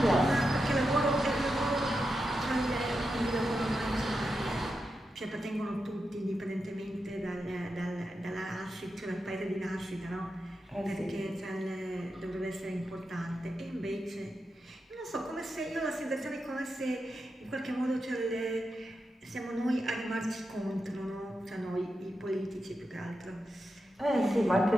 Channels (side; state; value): both; normal; correlation 0.88